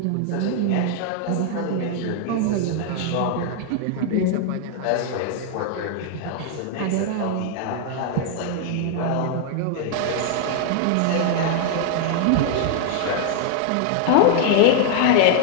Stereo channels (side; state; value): both; different; correlation 0.00